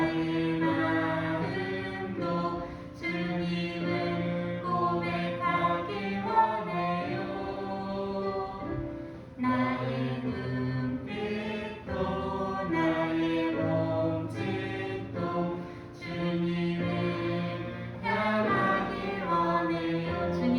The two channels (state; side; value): identical; both; correlation 1.00